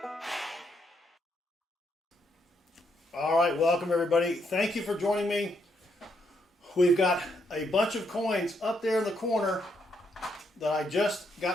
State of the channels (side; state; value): both; normal; correlation 0.76